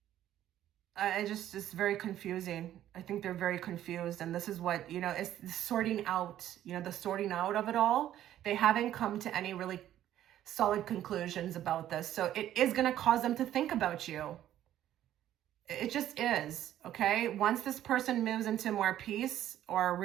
It's very confusing. I think they're very confused. And this is what, it's sorting out, the sorting out of it all. They haven't come to any really solid conclusions about this. So it is going to cause them to think about you. It just is, okay? Once this person moves into more peace or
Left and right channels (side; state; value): left; quieter; 12.1 dB